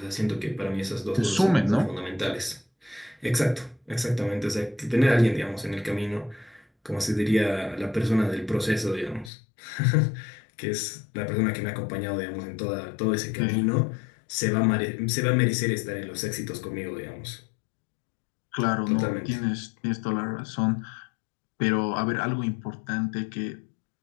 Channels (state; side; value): drops out; right; at 9.3 s